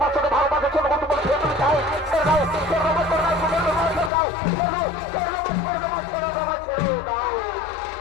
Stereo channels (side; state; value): right; drops out; at 4.1 s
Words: বাচ্চাকে ভালোবাসার জন্য বলতে বলে ছেড়ে দাও, ছেড়ে দাও, ছেড়ে দাও, ছেড়ে দাও, ছেড়ে দাও, ছেড়ে দাও, ছেড়ে দাও, ছেড়ে দাও, ছেড়ে দাও, ছেড়ে দাও।